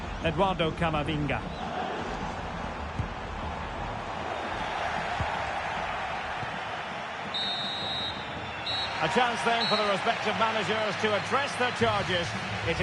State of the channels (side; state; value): both; identical; correlation 1.00